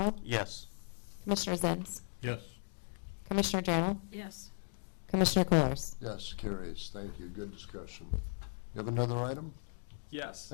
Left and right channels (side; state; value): right; silent; digital silence